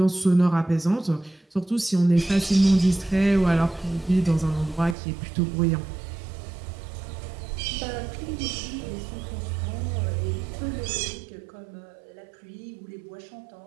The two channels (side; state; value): left; drops out; at 5.0 s